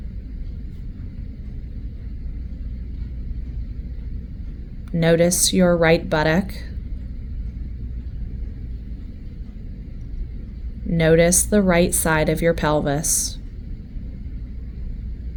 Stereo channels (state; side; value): identical; both; correlation 1.00